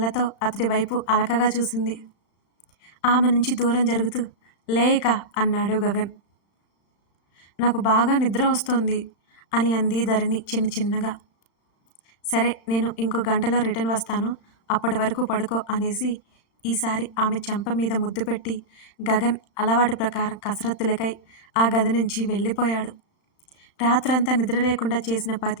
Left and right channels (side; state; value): right; late; 35 ms